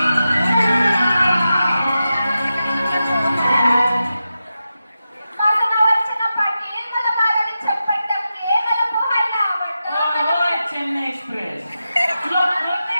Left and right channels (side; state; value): both; inverted; correlation -0.90